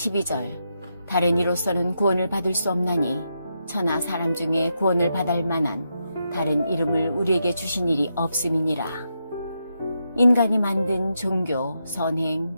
다른 이로서는 구원을 받을 수 없나니 천하 사람 중에 구원을 받을 만한 다른 이름을 우리에게 주신 일이 없음이니라. 인간이 만든 종교, 선행,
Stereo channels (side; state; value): both; inverted; correlation -0.84